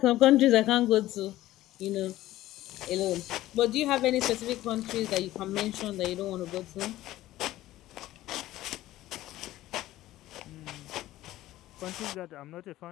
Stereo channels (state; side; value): quieter; right; 15.4 dB